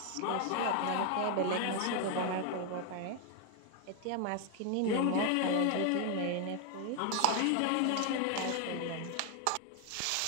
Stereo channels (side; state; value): both; different; correlation 0.01